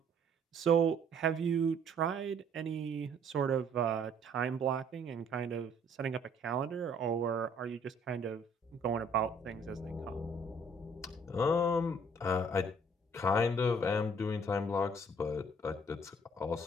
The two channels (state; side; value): normal; both; correlation 0.60